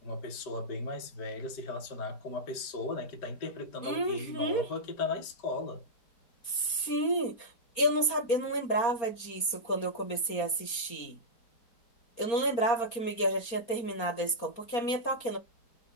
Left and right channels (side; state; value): right; late; 4.3 ms